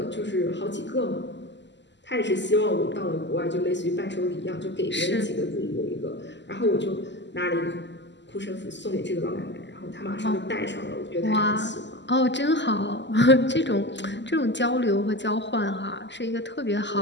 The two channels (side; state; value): right; late; 0.52 ms